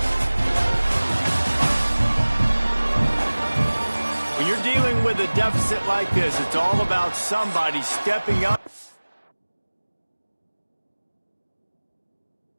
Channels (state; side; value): inverted; both; correlation -1.00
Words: When you're dealing with a deficit like this, it's all about somebody stepping up.